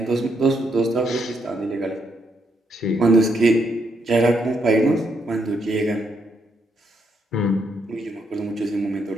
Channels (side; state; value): both; normal; correlation 0.76